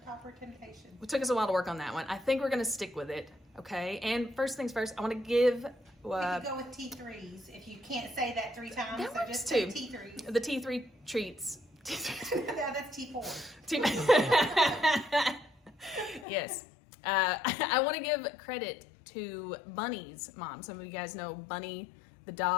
Topper Temptation. It took us a while to work on that one. I think we're gonna stick with it, okay? And first things first, I wanna give... you can go with T3s if you can't say that 3 times. That so works just too. say T3s. The T3 treats. Yeah, that's T4. Yes. I want to give credit to Bunny's mom. Some of you guys know Bunny, the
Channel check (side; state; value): right; drops out; at 16.2 s